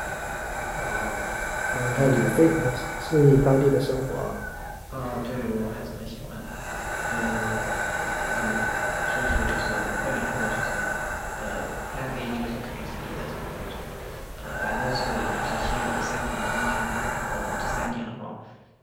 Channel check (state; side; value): identical; both; correlation 1.00